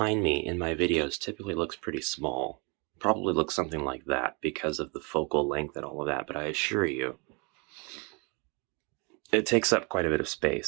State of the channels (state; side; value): quieter; left; 31.8 dB